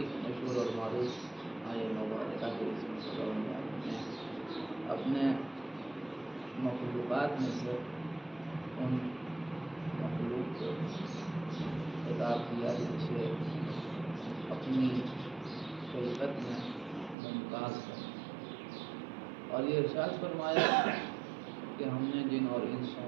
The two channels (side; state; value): left; drops out; at 17.2 s